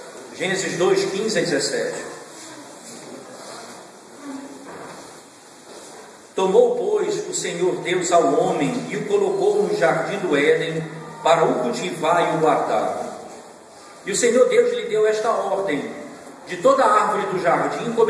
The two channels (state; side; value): identical; both; correlation 1.00